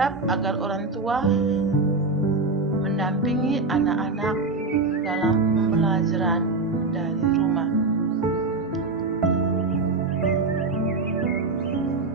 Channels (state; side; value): quieter; left; 3.5 dB